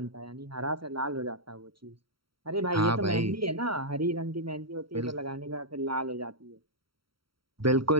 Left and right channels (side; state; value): left; late; 0.74 ms